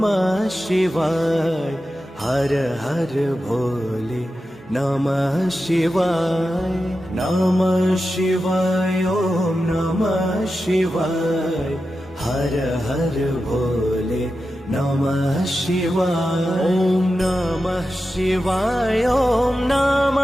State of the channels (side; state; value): both; normal; correlation 0.91